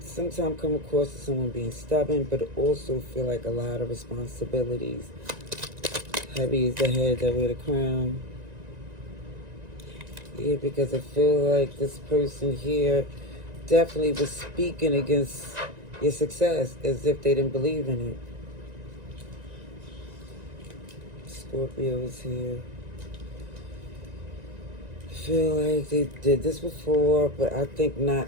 come across as someone being stubborn, but also feel like a lot of responsibilities Heavy is the head that wear the crown. Yeah, because I feel like this person here definitely was speaking against your success as if they didn't believe in it. Scorpio is here. I feel like they did this before, but I think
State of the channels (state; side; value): late; left; 1.9 ms